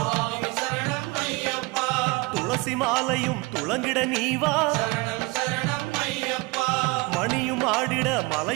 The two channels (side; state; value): left; quieter; 24.6 dB